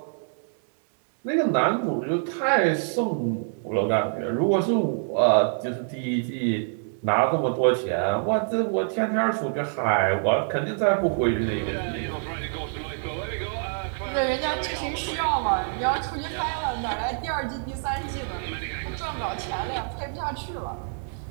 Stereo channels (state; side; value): silent; left; digital silence